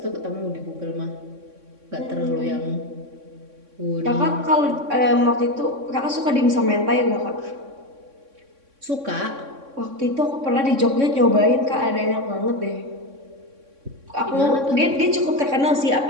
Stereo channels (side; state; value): left; late; 3.6 ms